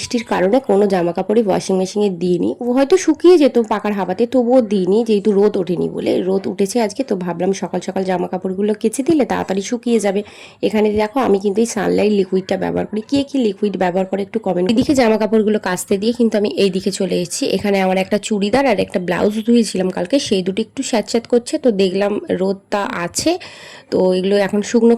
কারণে কোনো জামা কাপড়ই ওয়াশিং মেশিনে দিইনি। ও হয়তো শুকিয়ে যেত পাকার হাওয়াতে, তবুও দিইনি, যেহেতু রোদ ওঠেনি বলে। রোদ উঠেছে আজকে, তো ভাবলাম সকাল সকাল জামা কাপড়গুলো কেচে দিলে তাড়াতাড়ি শুকিয়ে যাবে। এখানে দেখো আমি কিন্তু এই সানলাইট লিকুইডটা ব্যবহার করি। কে কি লিকুইড ব্যবহার করে একটু কমেন্ট। এদিকে জামা কাপড়গুলো কাচতে দিয়ে কিন্তু আমি এই দিকে চলে এসেছি। এখানে আমার একটা চুড়িদার আর একটা ব্লাউজ ধুয়েছিলাম কালকে, সেই দুটো একটু স্যাঁতস্যাঁত করছে। তো দেখলাম রোদটা আছে, তো এগুলো এখন শুকনো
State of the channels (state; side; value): identical; both; correlation 1.00